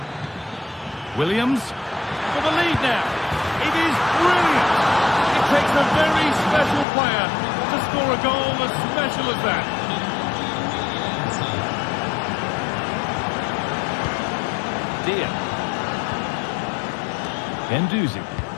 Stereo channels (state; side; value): drops out; right; at 6.9 s